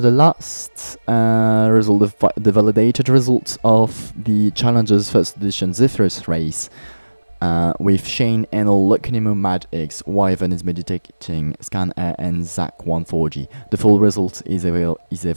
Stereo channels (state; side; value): inverted; both; correlation -1.00